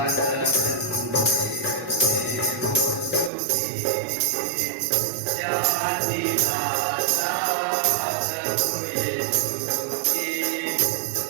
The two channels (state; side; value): drops out; left; at 3.3 s